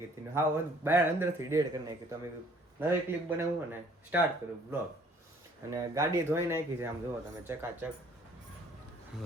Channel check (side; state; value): both; normal; correlation 0.58